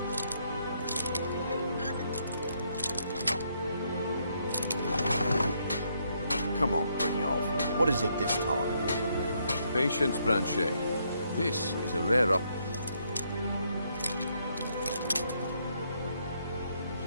Come on, Brynjolf. What is it this time? Patience, Branchet. This is a rare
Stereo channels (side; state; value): both; inverted; correlation -0.74